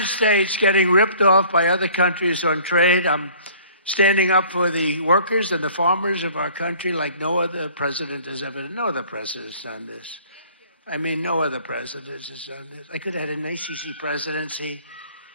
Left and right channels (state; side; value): inverted; both; correlation -0.52